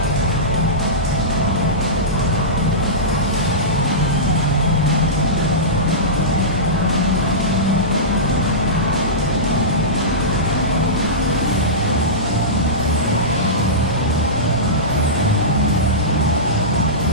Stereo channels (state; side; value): normal; both; correlation -0.17